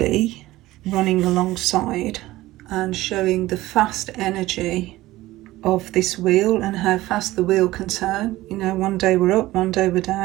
running alongside and showing the fast energy of this wheel and how fast the wheel can turn. You know, one day we're up, one day we're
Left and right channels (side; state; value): left; quieter; 17.2 dB